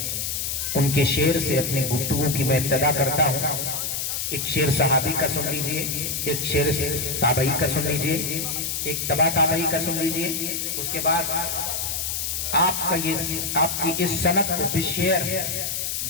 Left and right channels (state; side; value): noise; left; hiss, 2 dB below the sound